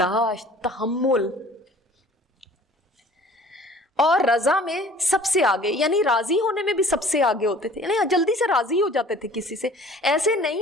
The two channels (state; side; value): normal; both; correlation 0.49